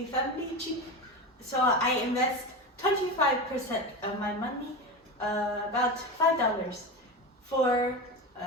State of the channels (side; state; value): both; normal; correlation 0.23